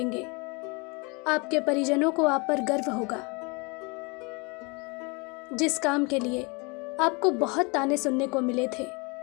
आपके परिजनों को आप पर गर्व होगा। जिस काम के लिए आपको बहुत ताने सुनने को मिले थे,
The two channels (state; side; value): quieter; right; 29.9 dB